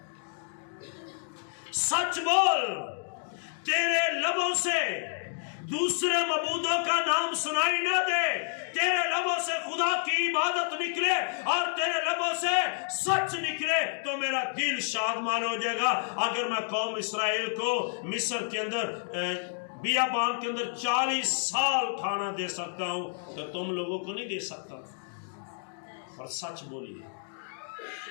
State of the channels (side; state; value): right; silent; digital silence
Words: سچ بول، تیرے لبوں سے دوسرے معبودوں کا نام سنائی نہ دے، تیرے لبوں سے خدا کی عبادت نکلے اور تیرے لبوں سے سچ نکلے تو میرا دل شادمان ہو جائے گا. اگر میں قوم اسرائیل کو مصر کے اندر بیابان کے اندر 40 سال کھانا دے سکتا ہوں تو تم لوگوں کو نہیں دے سکتا. اور سچ بولیے.